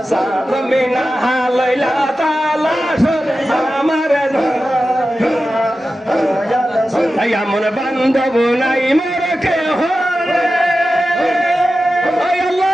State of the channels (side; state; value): both; normal; correlation 0.93